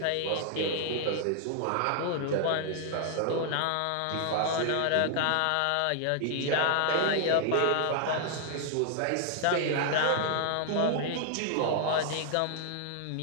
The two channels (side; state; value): both; different; correlation -0.01